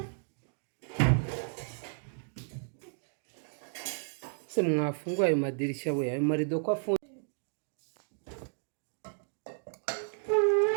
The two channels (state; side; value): silent; left; digital silence